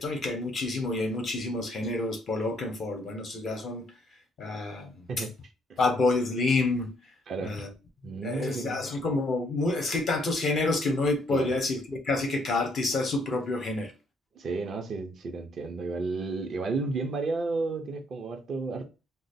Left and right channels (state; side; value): normal; both; correlation 0.69